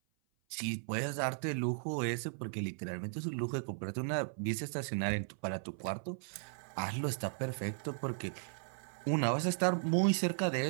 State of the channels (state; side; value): silent; left; 54 dB below the other